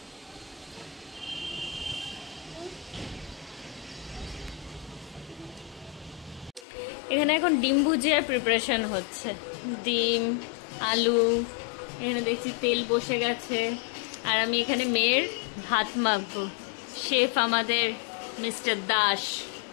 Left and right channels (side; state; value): right; drops out; at 6.7 s